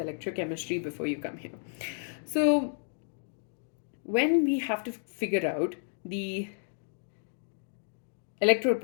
before you come here. So, when we have to figure out the electrode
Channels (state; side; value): silent; right; digital silence